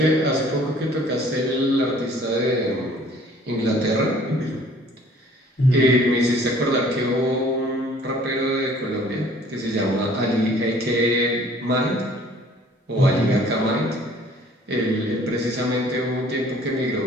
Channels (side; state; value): both; normal; correlation 0.54